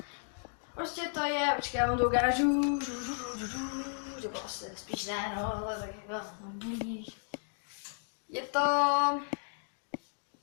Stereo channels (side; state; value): right; silent; digital silence